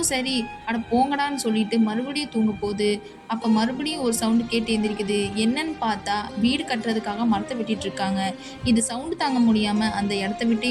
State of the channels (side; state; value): both; identical; correlation 1.00